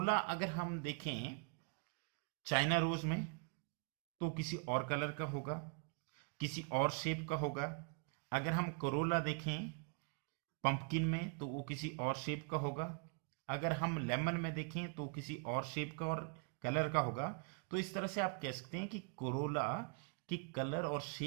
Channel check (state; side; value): quieter; left; 35.8 dB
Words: अगर हम देखें चाइना रोज में तो किसी और कलर का होगा, किसी और शेप का होगा। अगर हम कोरोला देखें पंपकिन में तो वो किसी और शेप का होगा। अगर हम लेमन में देखें तो किसी और शेप का और कलर का होगा। तो इस तरह से आप कह सकते हैं कि कोरोला की कलर और